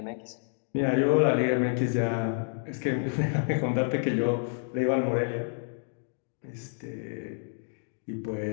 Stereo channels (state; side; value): silent; right; digital silence